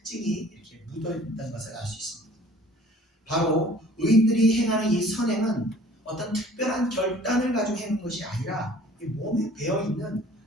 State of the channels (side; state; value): both; normal; correlation 0.50